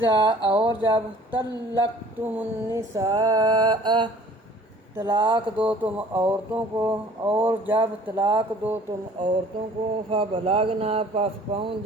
اور جب طلقتم النساء طلاق دو تم عورتوں کو، اور جب طلاق دو تم عورتوں کو، فبلغنا پس پہنچ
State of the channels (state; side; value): normal; both; correlation 0.51